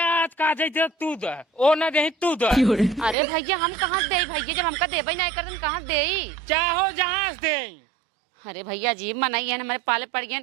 आज का दे तू दे ओ ना दे तू दे। अरे भैया हम कहाँ दे भैया जब हमका देबे नहीं कर कहाँ दे चाहो जहाँ दे। अरे भैया जी मनाई है हमारे पाले पड़ गए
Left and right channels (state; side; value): drops out; left; at 3.2 s